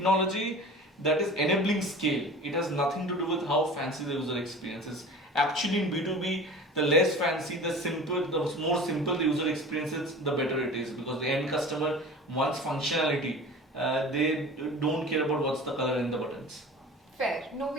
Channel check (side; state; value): both; normal; correlation 0.38